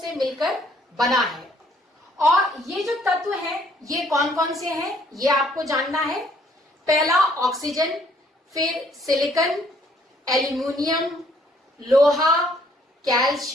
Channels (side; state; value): both; normal; correlation 0.64